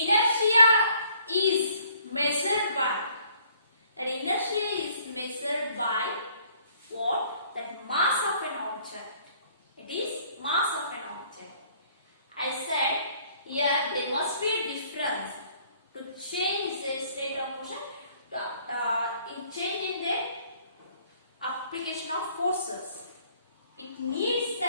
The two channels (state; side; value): inverted; both; correlation -0.61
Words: is measured by, that inertia is measured by what? That mass of an object. It is mass of an object. I said here there must be a difference to change the state of motion, in change in the application of forces. It needs